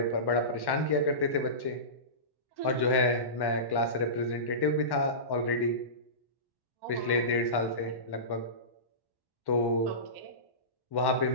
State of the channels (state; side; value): late; right; 1.1 ms